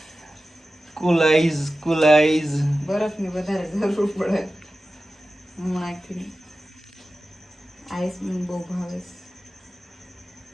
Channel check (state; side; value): normal; both; correlation 0.94